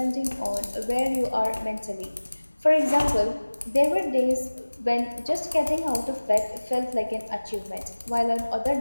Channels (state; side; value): inverted; both; correlation -1.00